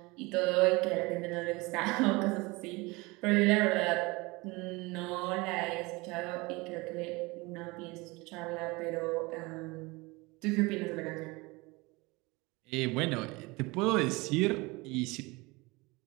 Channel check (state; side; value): quieter; left; 24.3 dB